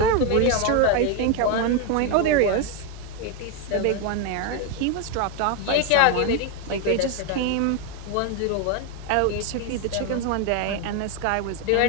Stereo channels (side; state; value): both; different; correlation 0.02